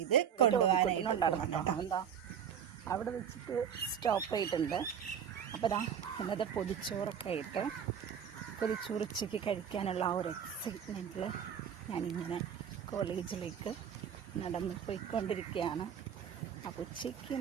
കൊണ്ടുപോകാനായിട്ട് എന്താ അവിടെ വെച്ചിട്ട് സ്റ്റോപ്പ് ചെയ്തിട്ടുണ്ട്. അപ്പോൾ ഇന്നത്തെ പൊതിച്ചോറൊക്കെ ആയിട്ട് പൊതിച്ചോറ് ഉച്ചയ്ക്ക് കഴിക്കാനുള്ള ആ ഒരു എക്സൈറ്റ്മെൻറ്റിൽ ഞാനിങ്ങനെ കോളേജിലേക്ക് നടന്ന് പോയിക്കൊണ്ടിരിക്കുകയാണ്. അപ്പോൾ ഉച്ചയ്ക്ക്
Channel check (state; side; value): quieter; left; 8.2 dB